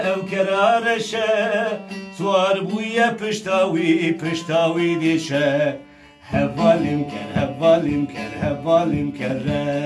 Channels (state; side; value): identical; both; correlation 1.00